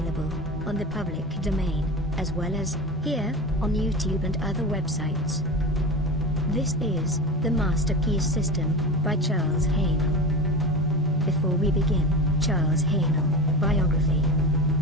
on the public domain, as well as here on YouTube and other websites. This is The Master Key System by Charles Haanel. Before we begin, Charles Haanel, biography.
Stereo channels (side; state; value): both; normal; correlation 0.28